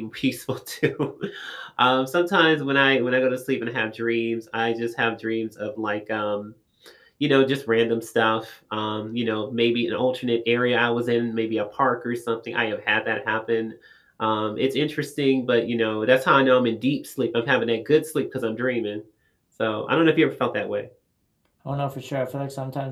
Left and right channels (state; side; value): identical; both; correlation 1.00